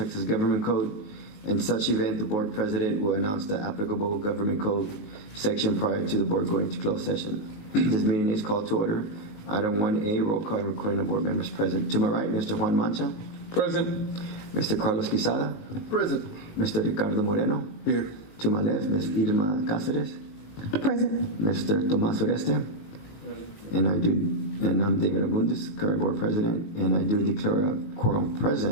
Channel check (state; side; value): late; right; 19 ms